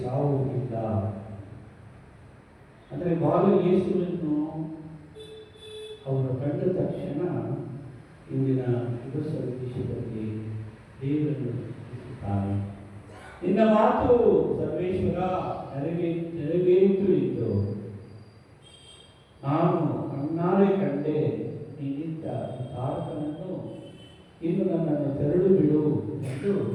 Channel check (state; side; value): identical; both; correlation 1.00